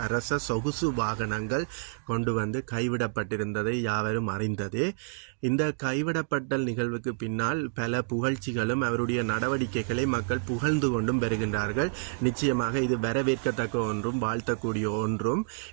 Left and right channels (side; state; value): left; silent; digital silence